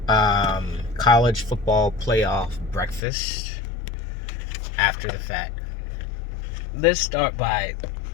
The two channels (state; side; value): drops out; right; at 3.1 s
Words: college football playoff breakfast after the fact. Let's start by,